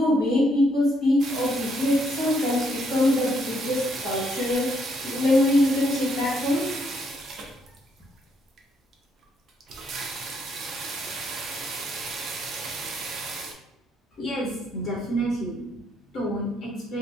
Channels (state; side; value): normal; both; correlation 0.73